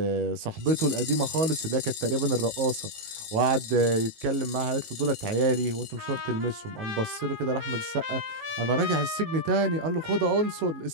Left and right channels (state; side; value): late; left; 18 ms